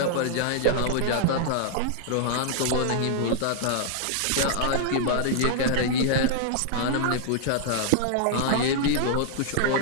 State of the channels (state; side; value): different; both; correlation -0.01